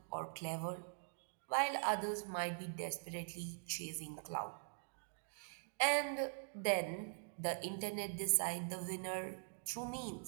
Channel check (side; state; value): left; silent; digital silence